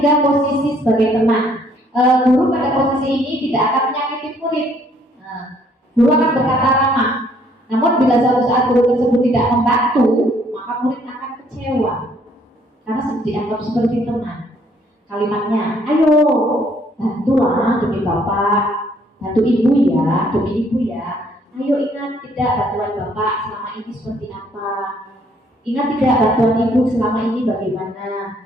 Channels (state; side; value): normal; both; correlation 0.64